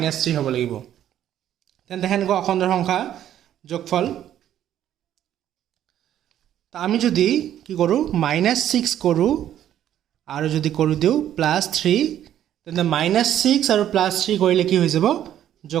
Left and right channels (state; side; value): quieter; left; 11.2 dB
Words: হ'ব লাগিব তেন্তে হেনকৈ অখণ্ড সংখ্যা যোগফল তা আমি যদি কি কৰো -6 কৰো আৰু যদি কৰি দিও +3 তেন্তে -6 আৰু +3 কৰিলে কি হৈ যাব